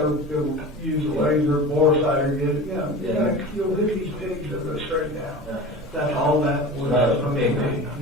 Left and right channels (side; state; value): both; normal; correlation 0.34